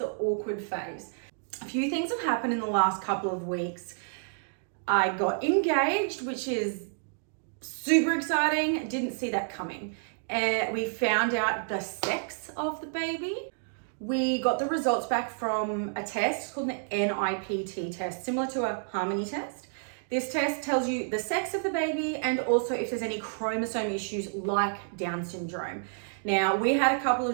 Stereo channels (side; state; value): left; silent; digital silence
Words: awkward phase. A few things have happened in the last couple of weeks. I got engaged, which is super exciting. Didn't see that coming. We found out the sex of the baby. We got the results back from a test called the NIPT test, similar to a Harmony test. This test tells you the sex of the baby and also if there's any chromosome issues like Down syndrome. Now, we had a couple